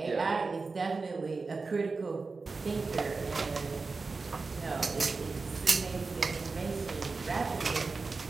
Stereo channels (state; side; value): quieter; left; 4.1 dB